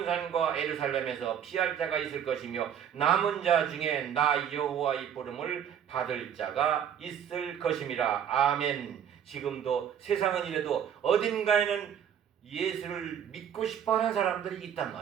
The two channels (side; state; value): left; quieter; 8.9 dB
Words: 예루살렘에서 피할 자가 있을 것이며 남은 자 중에 나 여호와의 부름을 받을 자가 있을 것임이라. 아멘. 지금도 세상은 이래도 어딘가에는 예수를 믿고 싶어하는 사람들이 있단